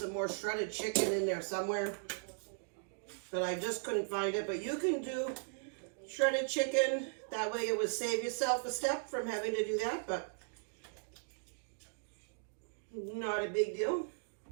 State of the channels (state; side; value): silent; left; digital silence